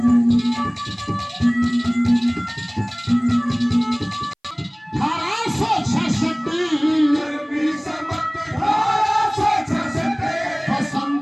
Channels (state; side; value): identical; both; correlation 1.00